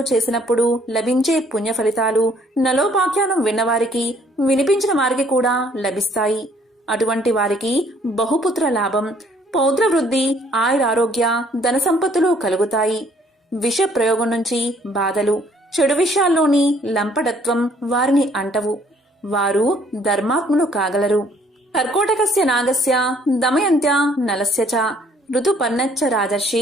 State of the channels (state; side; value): normal; both; correlation 0.62